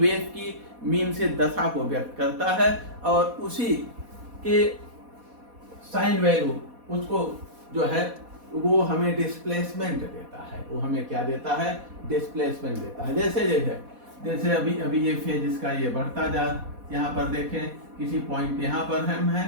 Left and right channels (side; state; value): left; late; 4.1 ms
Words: की मीन से दशा को व्यक्त करता है, और उसी के साइन वैल्यू उसको जो है वो हमें डिस्प्लेसमेंट देता है। वो हमें क्या देता है, डिस्प्लेसमेंट देता है। जैसे अभी ये फेज इसका ये बढ़ता जा, यहाँ पर देखें किसी पॉइंट यहाँ पर हम हैं